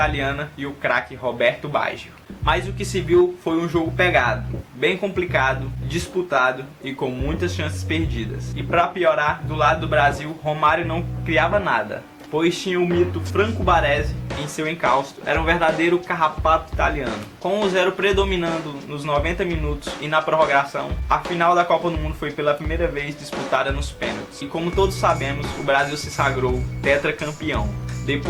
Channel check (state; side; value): identical; both; correlation 1.00